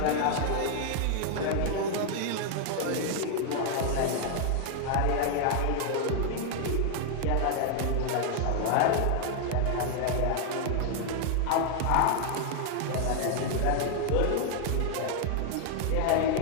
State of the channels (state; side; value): different; both; correlation 0.00